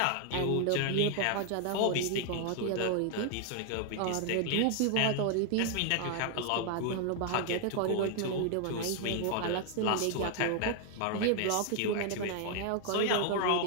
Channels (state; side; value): different; both; correlation 0.00